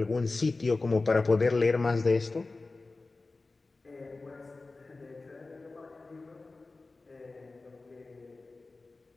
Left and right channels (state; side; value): quieter; right; 3.5 dB